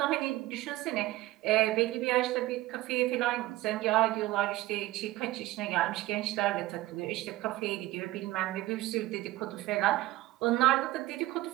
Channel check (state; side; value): quieter; left; 17.6 dB